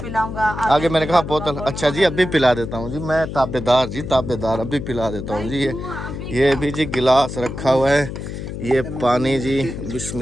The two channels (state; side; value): noise; left; hum, 7 dB below the sound